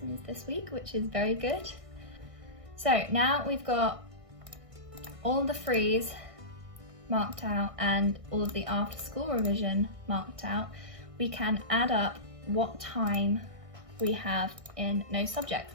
this week, which is very good. So now we've got all the frees marked out and all of the after school revision marked out. We can add up what time we have in no subjects.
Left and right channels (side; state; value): left; late; 1.6 ms